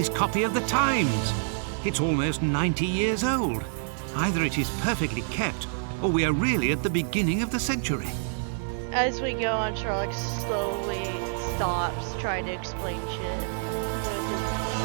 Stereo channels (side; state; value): left; silent; digital silence